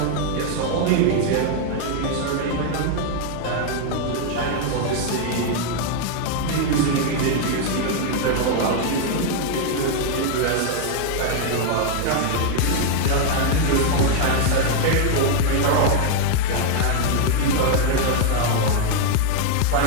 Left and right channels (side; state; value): both; different; correlation 0.00